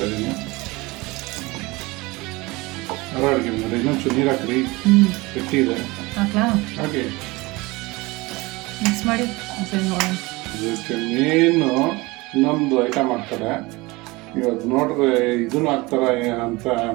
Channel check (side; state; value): left; quieter; 22.8 dB